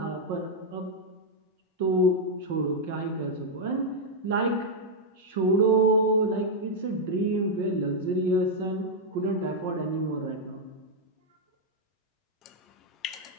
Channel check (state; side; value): normal; both; correlation -0.03